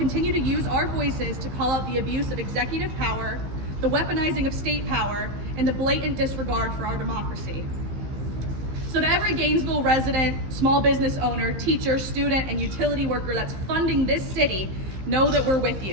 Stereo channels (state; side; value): late; left; 15 ms